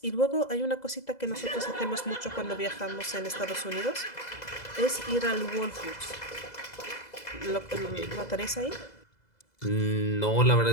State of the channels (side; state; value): right; late; 2.0 ms